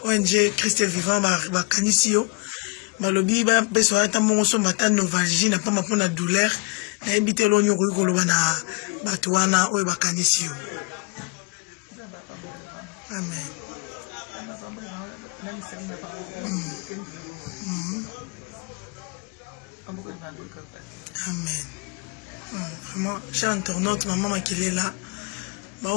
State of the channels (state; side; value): quieter; right; 30.7 dB